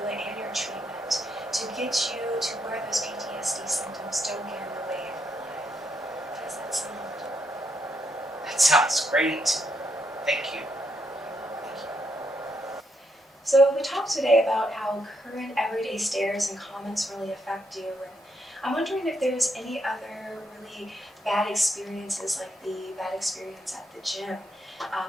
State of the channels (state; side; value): normal; both; correlation 0.78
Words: and your treatment to get you to where those PTSD symptoms don't get in the way of your life. How does that sound? That sounds great. Thank you. So we talked today about how current everyday stares and comments really affect you, and I'm wondering if there's any other really bad experiences, like the bad experience at the gym,